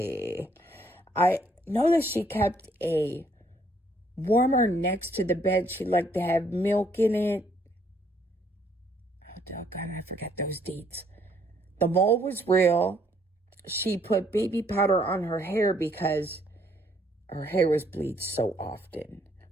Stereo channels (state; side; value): normal; both; correlation 0.67